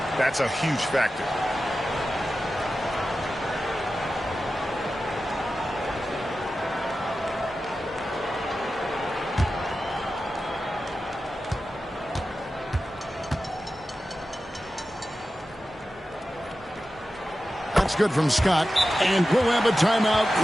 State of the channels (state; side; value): normal; both; correlation 0.93